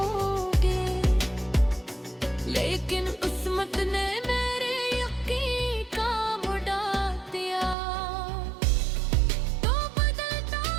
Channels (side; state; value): left; drops out; at 7.8 s